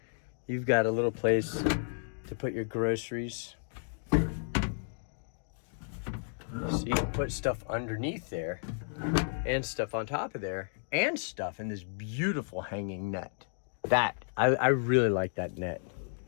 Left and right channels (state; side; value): silent; right; digital silence